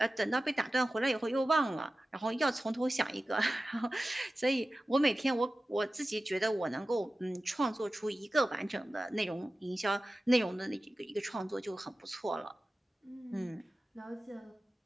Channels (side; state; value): both; normal; correlation 0.95